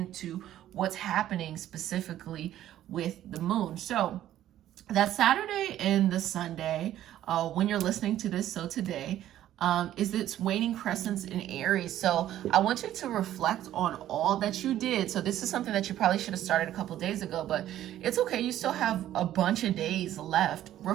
what's happening specifically with the moon. So that Saturday and the Sunday, when you're listening to this, so today, is its waning crescents in Aries. So I want you to reflect on all that you did. So this is something that you probably should have started a couple days ago, but it's okay. You still have a bunch of days left.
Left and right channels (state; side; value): quieter; left; 12.5 dB